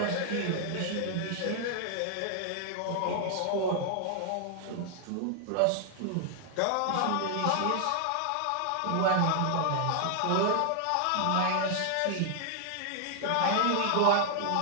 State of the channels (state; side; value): different; both; correlation 0.00